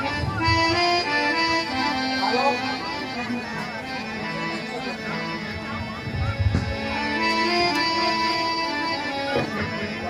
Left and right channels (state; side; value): identical; both; correlation 1.00